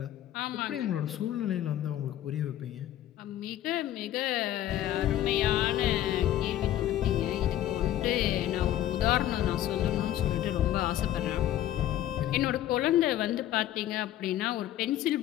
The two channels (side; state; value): right; quieter; 12.8 dB